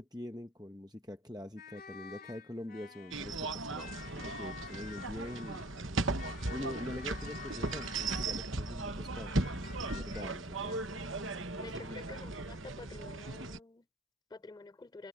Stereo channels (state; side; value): normal; both; correlation 0.50